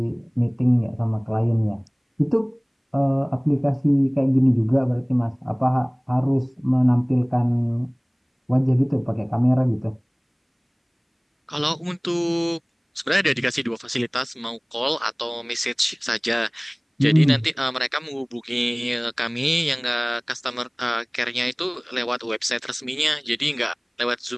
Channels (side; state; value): both; identical; correlation 1.00